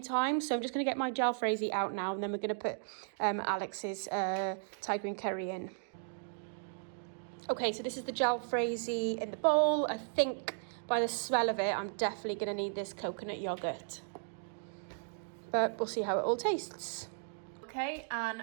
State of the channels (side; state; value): left; silent; digital silence